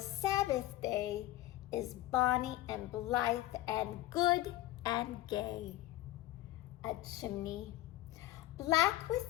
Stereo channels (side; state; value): right; quieter; 15.9 dB